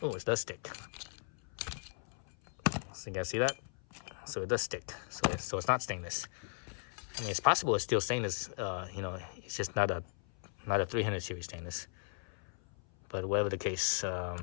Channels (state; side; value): silent; right; 53 dB below the other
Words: Oh, it does stick. So you guys see that? So it does stick. So it's not stainless. I mean, it's possible it's still stainless. It's just not a 300 series stainless. But whatever the case,